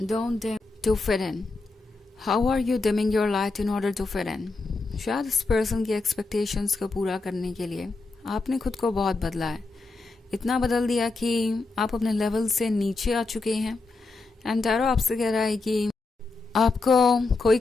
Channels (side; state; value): right; quieter; 3.6 dB